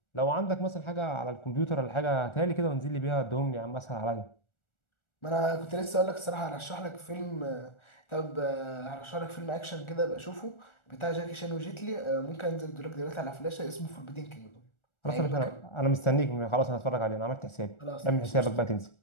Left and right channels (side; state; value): right; late; 1.4 ms